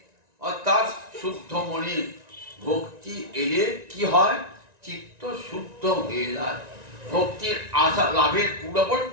অর্থাৎ শুদ্ধ মনে। ভক্তি এলে কি হয়, চিত্ত শুদ্ধ হয়ে যায়। ভক্তির আশা লাভের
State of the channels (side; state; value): left; late; 1.9 ms